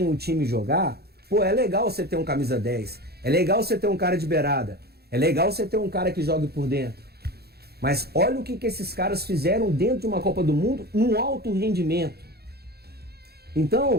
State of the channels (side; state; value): left; late; 0.46 ms